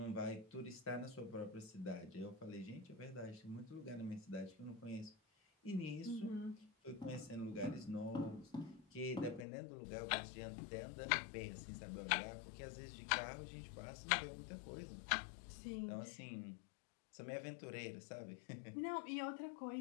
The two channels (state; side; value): drops out; right; at 9.5 s